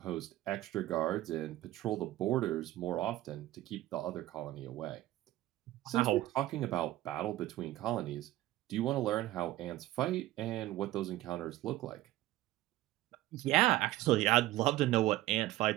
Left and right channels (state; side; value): quieter; left; 15.9 dB